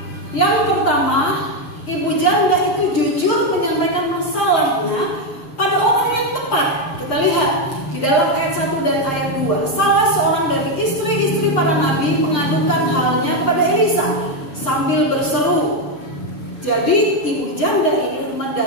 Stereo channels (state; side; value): late; right; 6.6 ms